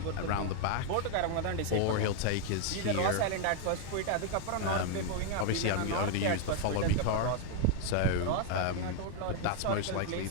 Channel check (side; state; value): both; different; correlation 0.00